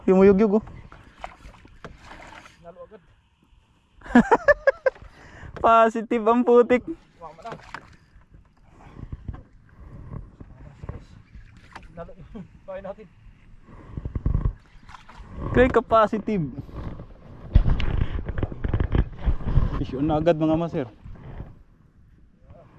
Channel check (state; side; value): identical; both; correlation 1.00